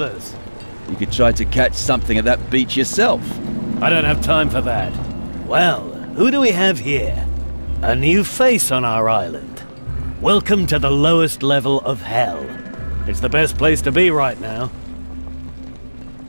You could try to catch something at that beach yourself. I don't have time for that. Well, who do we have here? A new face on our island. Welcome to the lowest level of hell. It's the best place to be right now.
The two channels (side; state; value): both; inverted; correlation -1.00